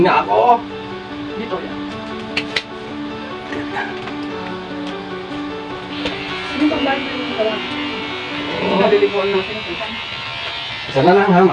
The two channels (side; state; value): both; identical; correlation 1.00